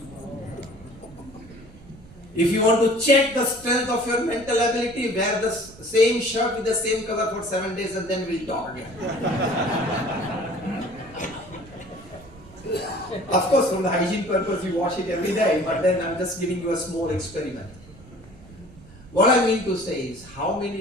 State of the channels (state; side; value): noise; right; rumble, 21 dB below the sound